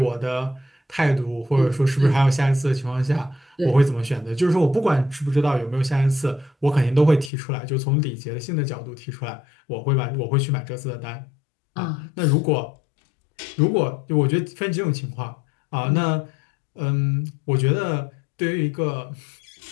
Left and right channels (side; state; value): right; drops out; at 7.3 s